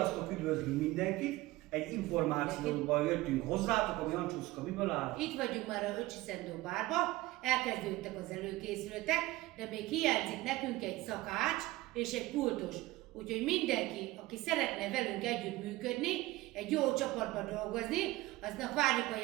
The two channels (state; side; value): quieter; left; 18.4 dB